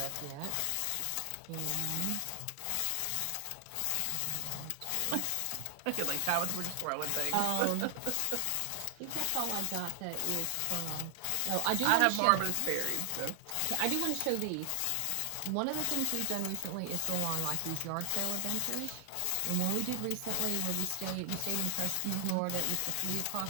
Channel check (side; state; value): both; different; correlation 0.00